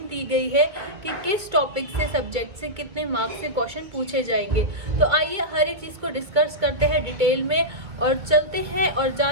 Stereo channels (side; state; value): left; late; 2.0 ms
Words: दी गई है कि किस टॉपिक से, सब्जेक्ट से कितने मार्क्स से क्वेश्चन पूछे जाएंगे। तो आइए हर एक चीज को डिस्कस करते हैं डिटेल में और चलते हैं और